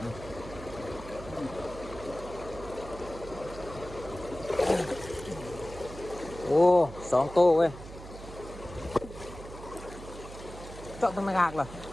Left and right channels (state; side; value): noise; right; hum, 14 dB below the sound